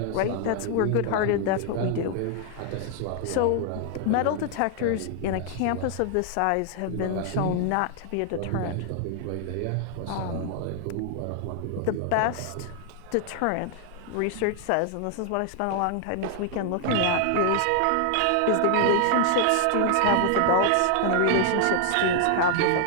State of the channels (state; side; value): different; both; correlation 0.00